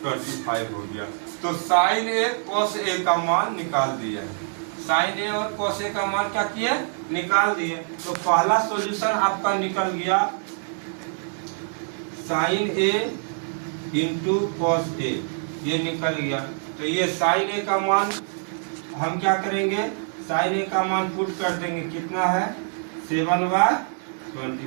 25 हो गया। तो साइन ए कॉस ए का मान निकाल दिया है, साइन ए और कॉस ए का मान क्या किए, निकाल दिए। तो पहला सॉल्यूशन आपका निकल गया, sign A into cos A, ये निकल गया। तो ये साइन ए का मान हम क्या करेंगे, साइन ए का मान पुट कर देंगे, कितना है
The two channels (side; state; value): left; silent; digital silence